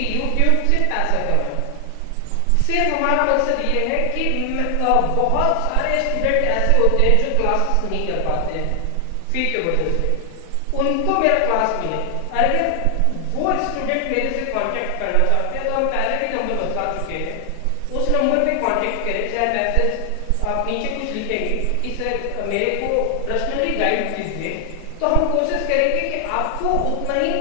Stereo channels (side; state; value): both; different; correlation 0.00